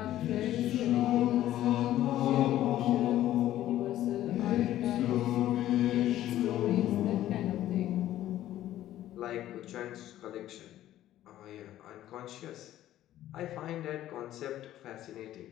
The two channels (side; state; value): right; quieter; 13.3 dB